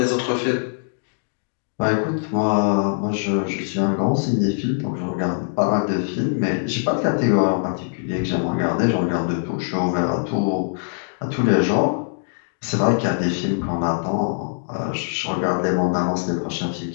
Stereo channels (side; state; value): right; silent; digital silence